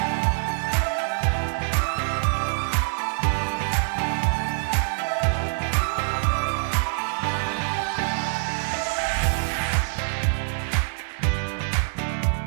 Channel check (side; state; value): left; silent; digital silence